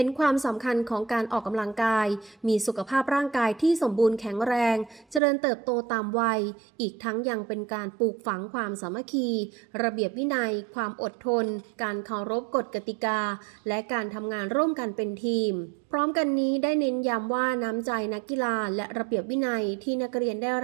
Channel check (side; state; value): left; drops out; at 5.2 s